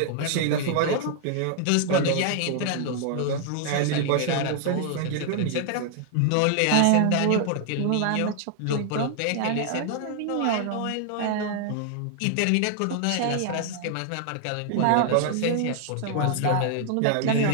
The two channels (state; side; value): different; both; correlation 0.00